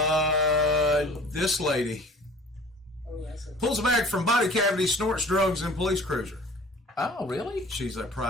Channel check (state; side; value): normal; both; correlation 0.47